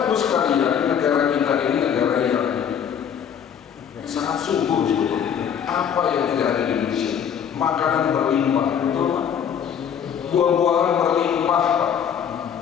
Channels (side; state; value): right; quieter; 8.2 dB